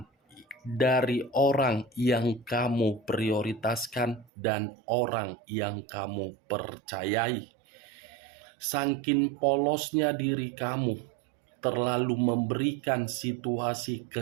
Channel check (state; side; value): drops out; left; at 4.2 s